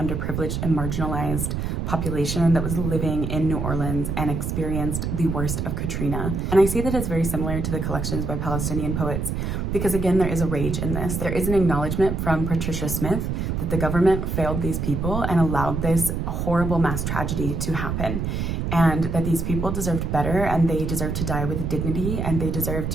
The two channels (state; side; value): noise; right; rumble, 2 dB below the sound